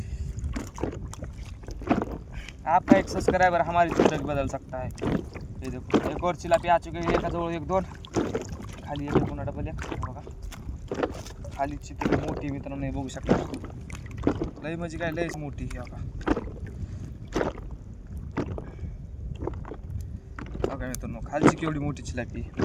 आपका एक सब्सक्राइबर हमारी जिंदगी बदल सकता है. ये देखो एक और चिलापी आ चुके हैं, एकाजवळ एक दोन, खाली एक पुन्हा डबल एक बघा. खाली चितळी मोठी मित्रांनो हे बघू शकता, लई म्हणजे काय लईच मोठी ही बघा. बघा मित्रांनो खालची केवढी मोठी चिलापी,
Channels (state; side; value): identical; both; correlation 1.00